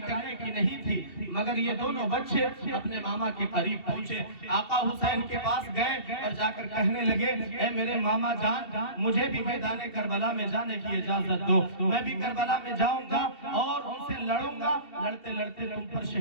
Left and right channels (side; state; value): right; late; 2.7 ms